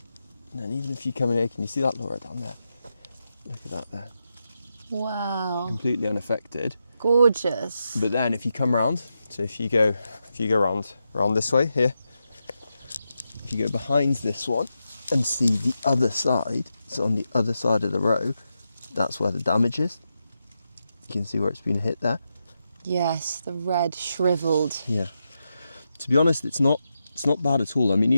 and then even if you come in here, can you see that, Laura, down there? Look at that there. Wow. Completely unaffected. Gorgeous. But then if you come round, so if you go round this way here, if you go behind this one and see the other side, so on the other side of the row, that's where the damage is. You can see where it's been hit there. Yes, the red shriveled. Yeah. To be honest, it's not bad at all. I mean,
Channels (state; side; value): inverted; both; correlation -0.87